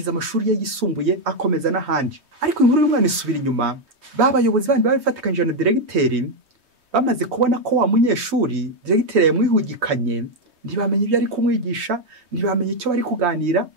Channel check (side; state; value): left; late; 3.2 ms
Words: amashuri ye yisumbuye, akomeza n'ahandi. Ariko inkuru y'umwana isubira inyuma, babayobozi bandi babifatikanyije na Diregiteri bamaze kubona ko wa munyeshuri Diregiteri yamwihugikanye, ntibamenye ibyo ari kumwigisha, ntibamenye icyo bari kuganira,